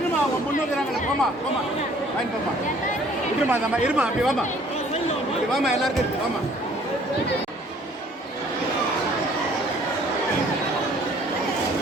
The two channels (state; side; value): normal; both; correlation 0.57